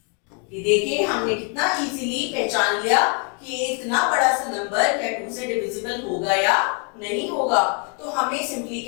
ये देखिए हमने कितना इजीली पहचान लिया कि ये इतना बड़ा सा नंबर क्या 2 से डिविजिबल होगा या नहीं होगा। तो हमें सिंपली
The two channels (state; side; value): quieter; right; 38.0 dB